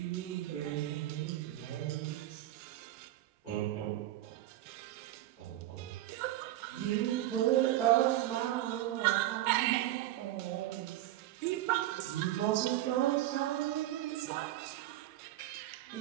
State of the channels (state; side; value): quieter; left; 14.4 dB